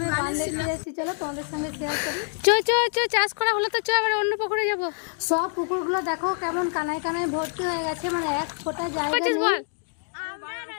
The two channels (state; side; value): silent; right; 61 dB below the other